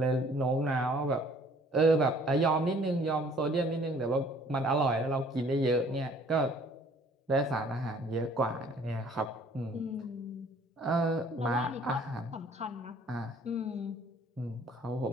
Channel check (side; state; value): both; normal; correlation 0.57